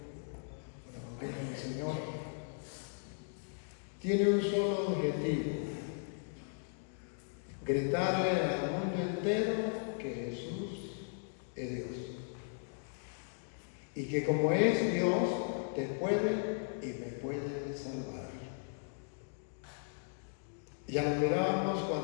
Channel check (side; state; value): right; silent; digital silence